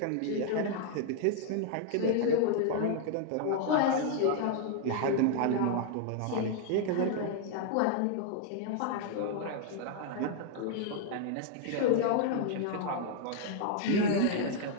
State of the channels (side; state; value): both; different; correlation 0.00